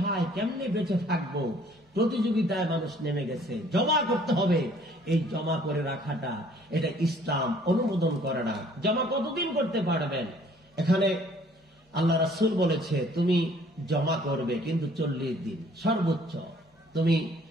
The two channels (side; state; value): both; normal; correlation 0.58